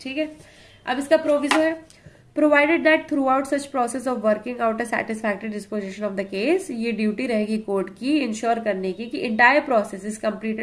ठीक है, अब इसका प्रोविजो है, provided that through out such process of working out a satisfactory disposition of the case, ये ड्यूटी रहेगी कोर्ट की इंश्योर करने की कि entire process is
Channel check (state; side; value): identical; both; correlation 1.00